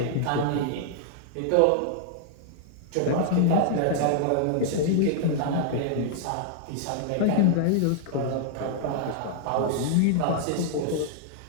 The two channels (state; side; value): different; both; correlation -0.01